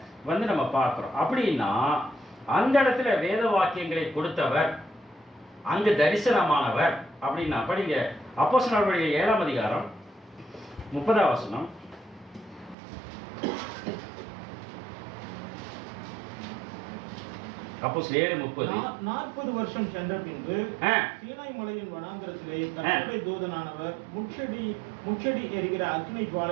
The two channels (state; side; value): drops out; left; at 12.8 s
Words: நம்ம பார்க்கிறோம். அப்படின்னா அந்த இடத்துல வேத வாக்கியங்களை கொடுத்தவர், அங்கு தரிசனமானவர். அப்படின்னா படிங்க அப்போஸ்தலர்கள் 7ஆம் அதிகாரம் 30ஆம் வசனம். அப்போஸ்தலர் 7:30. 40 வருஷம் சென்ற பின்பு சீனாய் மலையின் வனாந்தரத்திலே கர்த்தருடைய தூதனானவர் முச்செடி எரிகிற அக்கினி